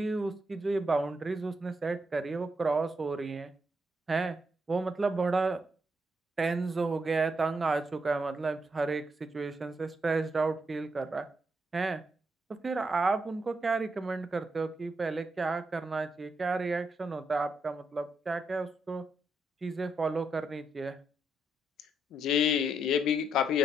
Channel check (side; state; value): both; normal; correlation 0.80